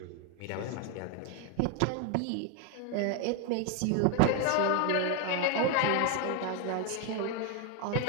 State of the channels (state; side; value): different; both; correlation 0.01